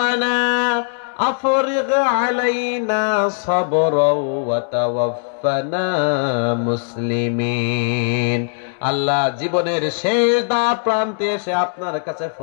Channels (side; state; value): right; silent; 66 dB below the other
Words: আফরিগ আলাইনা সাবরাও ওয়া তাওয়াফফানা মুসলিমিন। আল্লাহ, জীবনের শেষ দা প্রান্তে এসে আপনার কাছে